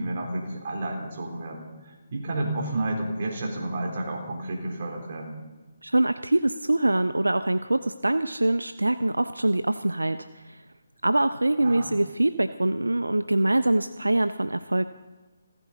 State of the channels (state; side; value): inverted; both; correlation -0.98